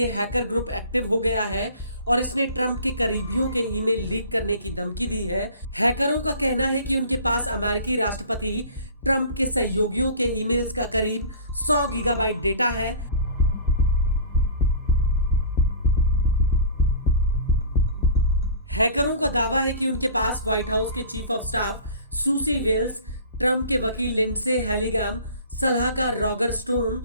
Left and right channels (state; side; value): inverted; both; correlation -0.42